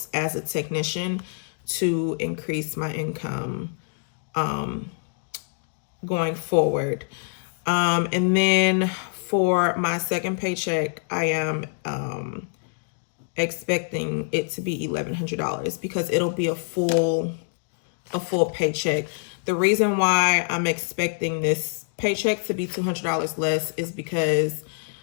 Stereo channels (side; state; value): right; silent; digital silence